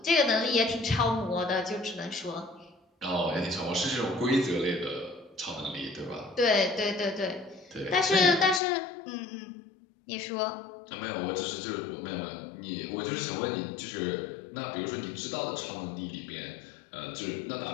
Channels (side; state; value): right; drops out; at 8.6 s